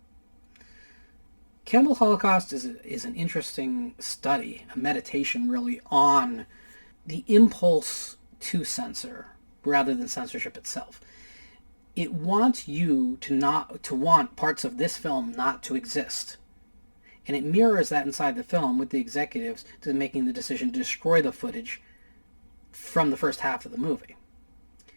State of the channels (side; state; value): both; inverted; correlation -1.00